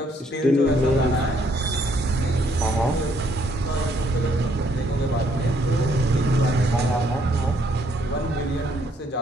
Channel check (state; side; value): normal; both; correlation 0.69